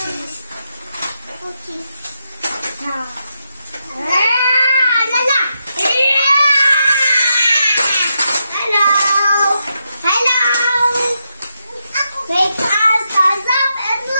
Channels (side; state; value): both; inverted; correlation -0.84